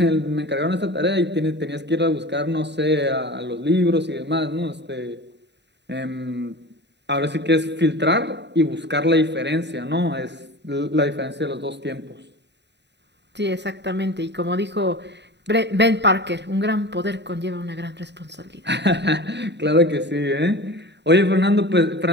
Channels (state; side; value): late; left; 0.50 ms